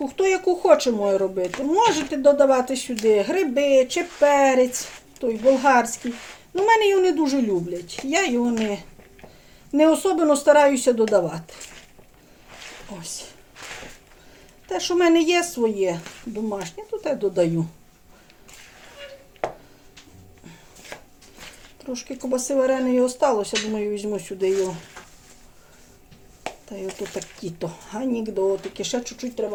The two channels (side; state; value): both; identical; correlation 1.00